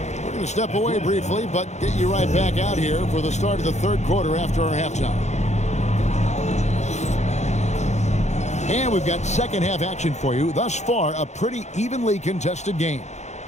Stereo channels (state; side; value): late; right; 0.33 ms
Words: going to step away briefly, but get you right back out here for the start of the third quarter after our halftime. And we've got second half action for you. Thus far, a pretty evenly contested game.